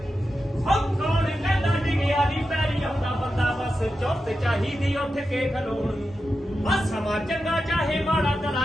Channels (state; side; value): normal; both; correlation 0.90